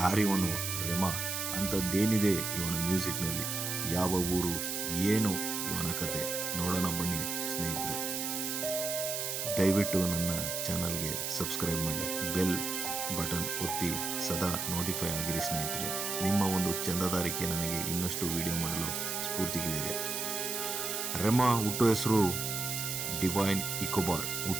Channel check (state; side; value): noise; right; hiss, 2 dB below the sound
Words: ರೆಮಾ? ಅಂಥದ್ದೇನಿದೆ ಇವನ ಮ್ಯೂಸಿಕ್ನಲ್ಲಿ? ಯಾವ ಊರು, ಏನು ಇವನ ಕತೆ? ನೋಡೋಣ ಬನ್ನಿ ಸ್ನೇಹಿತರೆ. ದಯವಿಟ್ಟು ನನ್ನ ಚಾನಲ್ಗೆ ಸಬ್ಸ್ಕ್ರೈಬ್ ಮಾಡಿ, ಬೆಲ್ ಬಟನ್ ಒತ್ತಿ ಸದಾ ನೋಟಿಫೈ ಆಗಿರಿ ಸ್ನೇಹಿತರೆ. ನಿಮ್ಮ ಒಂದು ಚಂದಾದಾರಿಕೆ ನನಗೆ ಇನ್ನಷ್ಟು ವಿಡಿಯೋ ಮಾಡಲು ಸ್ಫೂರ್ತಿಗಿದ್ದಾರೆ. ರೆಮಾ ಹುಟ್ಟು ಹೆಸರು ಡಿವೈನ್ ಇಕೋಬಾರ್.